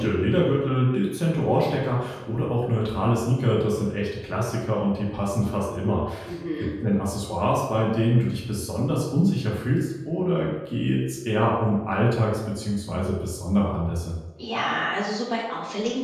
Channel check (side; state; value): both; identical; correlation 1.00